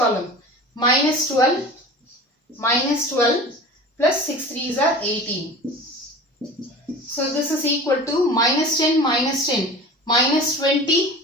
minus 12, plus 6 3s are 18. So this is equal to minus 10, minus 10, minus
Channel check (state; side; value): normal; both; correlation 0.37